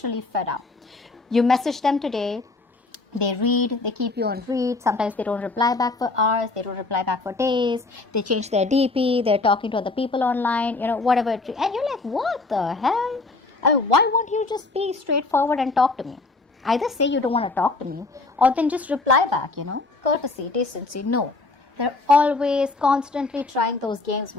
fed up. You message them today, they read, they keep you on read. Sometimes they don't reply back for hours, they don't reply back for days, they change their DP, they're talking to other people online, whatever. And you're like, what the hell? I mean, why won't you just be straightforward and talk to me? Either say you don't want to talk to me, or then just reply back, courtesy, decency. No, they're always constantly trying those games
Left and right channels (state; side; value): quieter; right; 3.5 dB